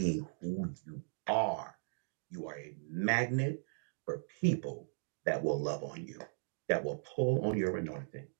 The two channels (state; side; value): silent; left; digital silence